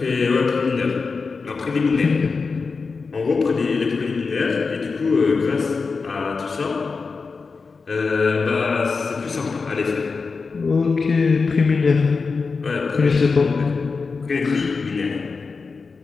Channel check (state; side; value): quieter; right; 4.6 dB